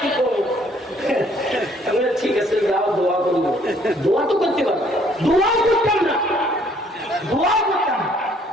করবো? ঠিক আছে, যাও দোয়া করবো। দোয়া তো করতে পারবো, দোয়াও করতাম না। দোয়া করতাম।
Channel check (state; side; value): normal; both; correlation 0.63